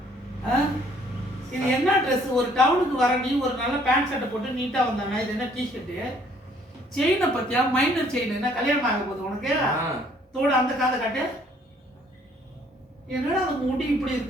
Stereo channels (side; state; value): both; normal; correlation 0.62